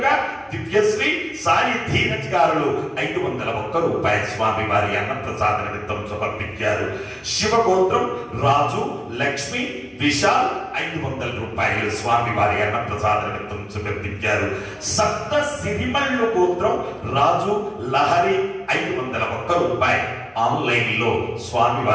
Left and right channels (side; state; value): both; identical; correlation 1.00